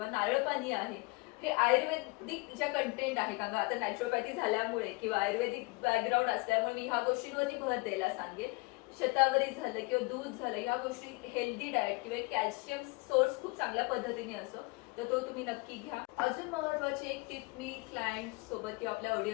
नारळ पाणी आहे, हे आयुर्वेदिक ज्या कंटेंट आहे, कारण आता नॅचरोपॅथी झाल्यामुळे किंवा आयुर्वेदिक बॅकग्राऊंड असल्यामुळे मी ह्या गोष्टींवरती भर द्यायला सांगेन. शतावरी झालं किंवा दूध झालं, ह्या गोष्टी हेल्दी डाएट किंवा कॅल्शियम सोर्स खूप चांगल्या पद्धतीने असो, तर तो तुम्ही नक्की घ्या. अजून महत्वाची एक टिप मी क्लायंट सोबत किंवा आपल्या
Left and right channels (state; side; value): quieter; right; 26.4 dB